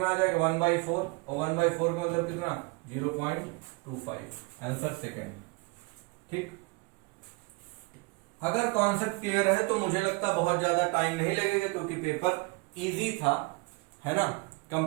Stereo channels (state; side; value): quieter; left; 28.3 dB